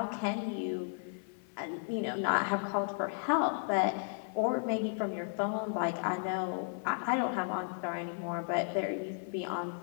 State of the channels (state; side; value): silent; right; 55 dB below the other